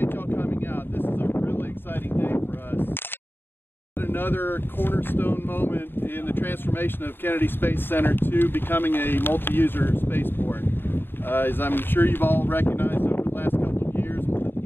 y'all coming out. This is a really exciting day for us. Another cornerstone moment in the transformation of Kennedy Space Center to becoming a multi-user spaceport. As I'm sure you've all recognized over the last couple of years with the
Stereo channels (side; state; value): right; late; 0.10 ms